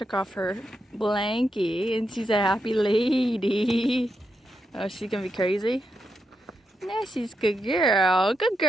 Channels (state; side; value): normal; both; correlation 0.84